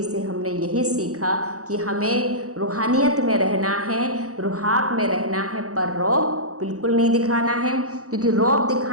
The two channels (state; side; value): late; left; 0.66 ms